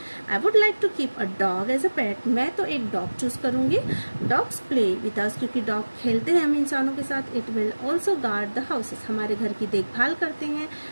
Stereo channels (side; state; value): both; inverted; correlation -1.00